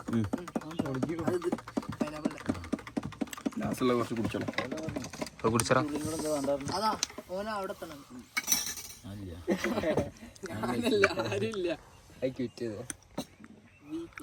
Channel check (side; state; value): both; identical; correlation 1.00